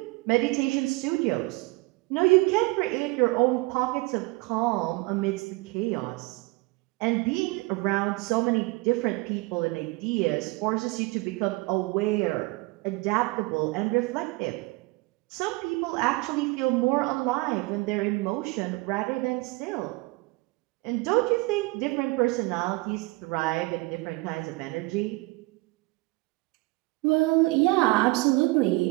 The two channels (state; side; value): quieter; left; 23.9 dB